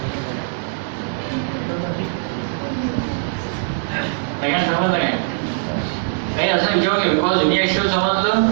समजलं काय? काही असं विचारू घ्या. बिकॉज युनिॲक्सियल समजलं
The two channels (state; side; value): silent; left; 65 dB below the other